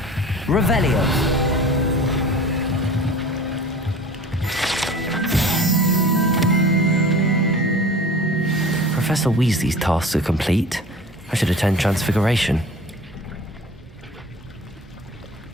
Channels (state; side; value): normal; both; correlation 0.41